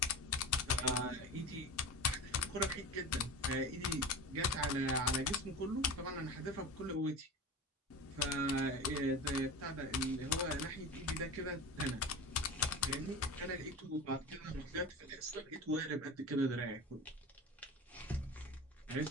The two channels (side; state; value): both; normal; correlation 0.30